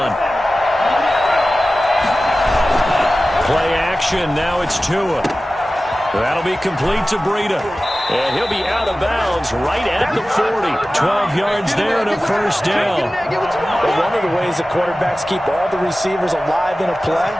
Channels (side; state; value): both; normal; correlation 0.96